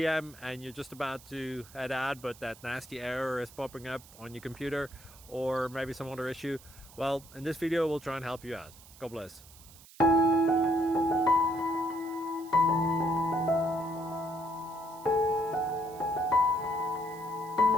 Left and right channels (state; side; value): noise; right; hiss, 21 dB below the sound